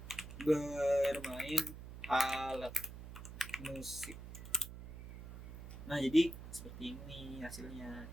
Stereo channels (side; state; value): right; noise; hum, 12 dB below the sound